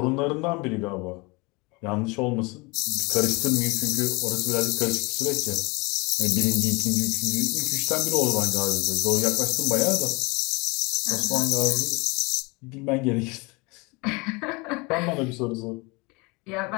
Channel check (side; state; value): right; quieter; 26.8 dB